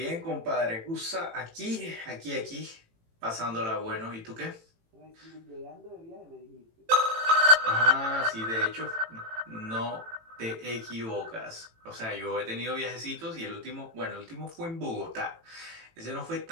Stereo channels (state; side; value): late; left; 18 ms